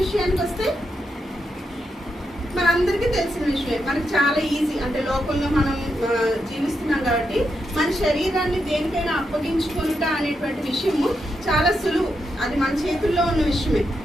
విషయానికి వస్తే మనందరికీ తెలిసిన విషయమే. మనకు చాలా ఈజీ, అంటే లోకంలో మనం జీవిస్తున్నాం కాబట్టి మన శరీరాన్ని దేనికైనా అప్పగించుకుంటా అనేటువంటి విషయము చాలా సులువు. అది మన చేతుల్లో ఉన్న విషయమే.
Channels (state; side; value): normal; both; correlation 0.84